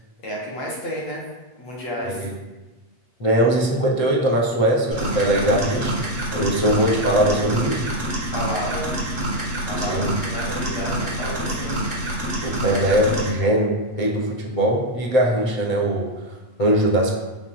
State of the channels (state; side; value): late; right; 7.9 ms